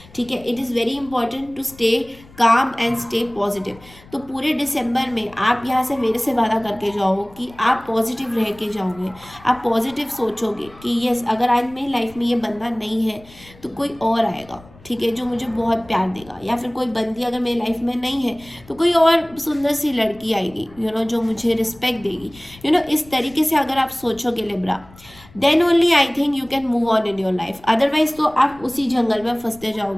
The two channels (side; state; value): left; noise; rumble, 23 dB below the sound